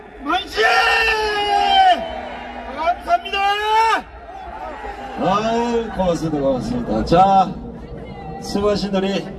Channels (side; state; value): both; identical; correlation 1.00